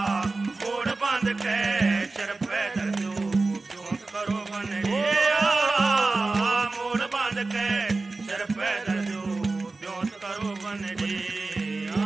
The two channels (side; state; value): left; quieter; 3.5 dB